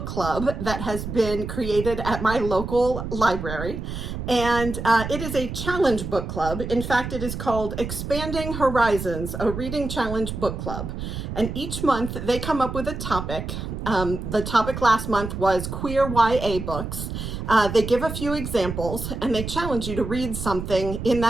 club that has been created at my local library. And it is a challenge book club. In fact, it is called Expanding Horizons, a reading challenge book club. And each month they come up with a topic. The topic last month was queer YA books. They give a few examples and they challenge you to read something in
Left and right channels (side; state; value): right; noise; rumble, 6 dB below the sound